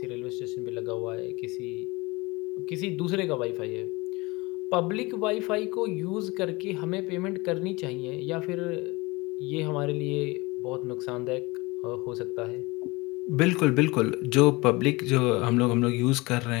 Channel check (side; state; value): right; quieter; 23.7 dB